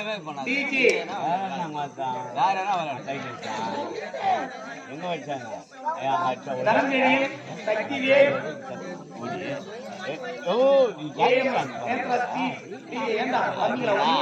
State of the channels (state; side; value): identical; both; correlation 1.00